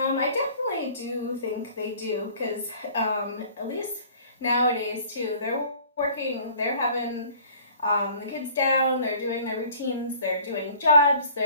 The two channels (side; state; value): both; inverted; correlation -0.50